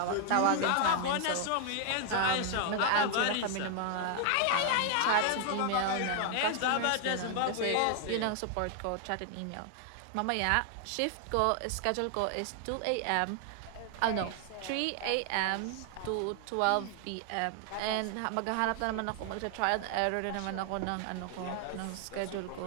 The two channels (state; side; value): different; both; correlation 0.00